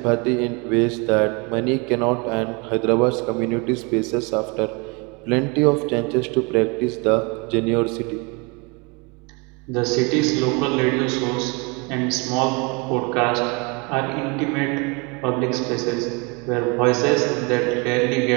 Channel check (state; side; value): quieter; left; 30.2 dB